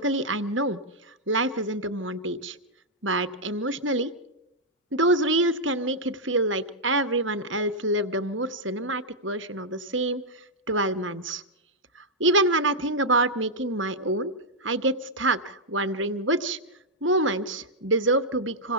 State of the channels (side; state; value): both; normal; correlation -0.05